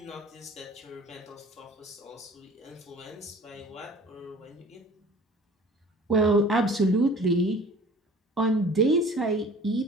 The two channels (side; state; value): both; normal; correlation 0.46